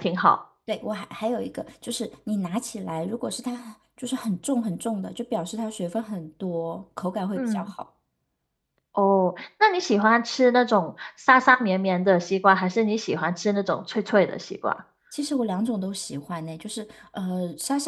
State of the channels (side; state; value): both; identical; correlation 1.00